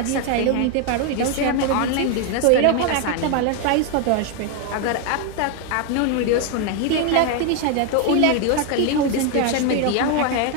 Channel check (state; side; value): different; both; correlation 0.01